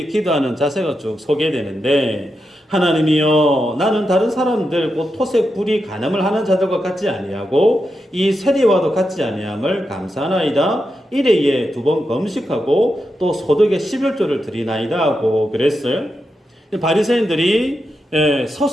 기도하는 자세가 쭉 소개되는데 하나님이여 나는 다른 사람들 곧 토색 불이 간음을 하는 자들과 같지 아니하고 이 세리와도 같지 아니함을 감사하나이다. 일회에 2번 금식하고 또 소득의 11조를 드리나이다 하고 그랬어요. 바리새인들이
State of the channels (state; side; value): normal; both; correlation 0.87